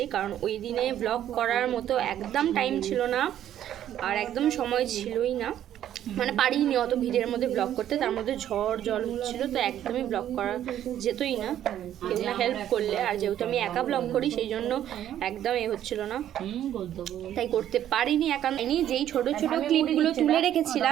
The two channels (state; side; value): quieter; left; 11.2 dB